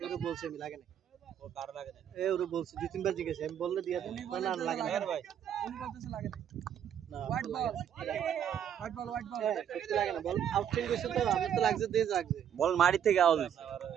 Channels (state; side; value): quieter; left; 9.2 dB